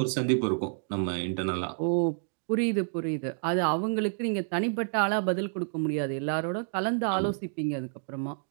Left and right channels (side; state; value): left; silent; digital silence